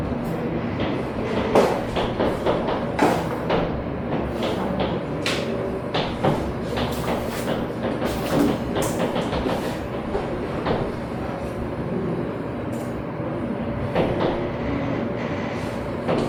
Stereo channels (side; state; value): both; identical; correlation 1.00